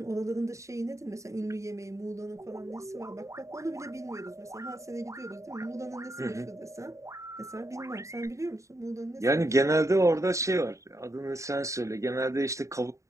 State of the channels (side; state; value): left; late; 0.15 ms